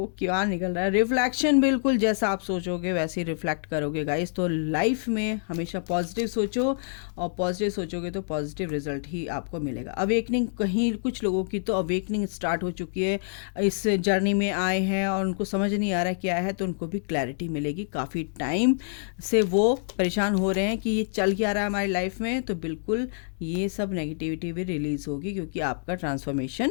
क्या निकल रहा है। रिफ्लेक्शन, बिल्कुल जैसा आप सोचोगे वैसे ही रिफ्लेक्ट करोगे गाइस। तो लाइफ में हमेशा पॉजिटिव सोचो और पॉजिटिव सोचोगे तो पॉजिटिव रिजल्ट ही आपको मिलेगा। अवेकनिंग, कहीं कुछ लोगों की तो अवेकनिंग स्टार्ट हो चुकी है, इस जर्नी में आए हैं और उनको समझ नहीं आ रहा क्या है, तो उनको भी क्लैरिटी मिलेगी। काफ़ी टाइम से वो परेशान हो रहे हैं कि ये चल क्या रहा है हमारी लाइफ में, तो बिल्कुल ये सब नेगेटिविटी भी रिलीज़ होगी क्योंकि आपका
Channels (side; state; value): right; silent; digital silence